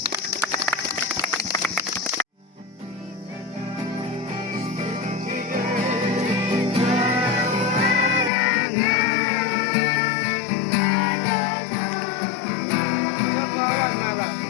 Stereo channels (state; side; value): drops out; right; at 8.3 s